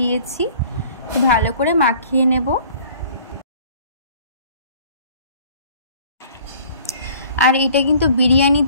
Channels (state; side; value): inverted; both; correlation -0.52